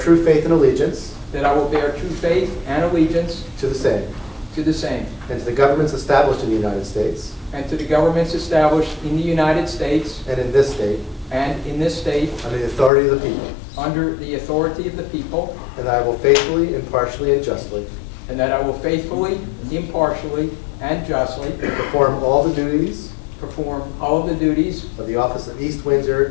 faith and allegiance that I will bear true faith and allegiance to the same, to the same, and to the governments established in the United States and to the governments established in the United States and in this state and in this state under the authority of the people, under the authority of the people, and that I will faithfully, impartially, and justly and that I will faithfully, impartially, and justly perform all the duties perform all of the duties of the office of East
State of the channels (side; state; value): right; drops out; at 12.9 s